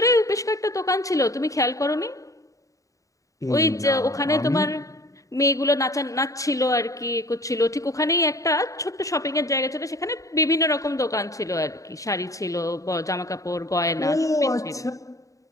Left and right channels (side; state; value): right; late; 0.16 ms